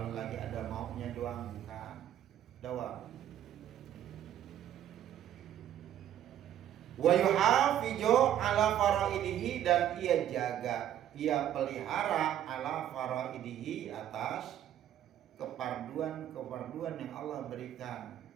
lagi ada maunya doang, bukan. Dawam. Wa yuhafizu ala faraidihi, dan ia jaga, ia pelihara ala faraidihi, atas keparduan yang Allah berikan.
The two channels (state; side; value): quieter; left; 11.1 dB